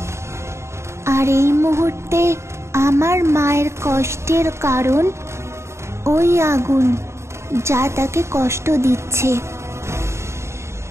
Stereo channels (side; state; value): left; late; 0.13 ms